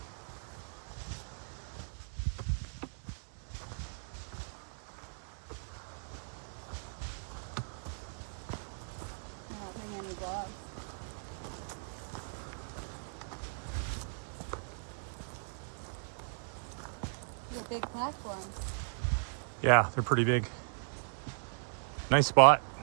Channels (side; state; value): left; silent; digital silence